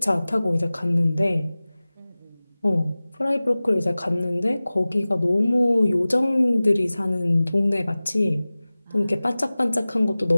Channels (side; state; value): both; inverted; correlation -0.98